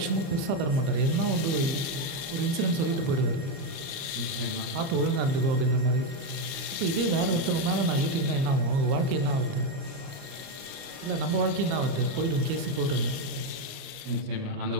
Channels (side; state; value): left; late; 29 ms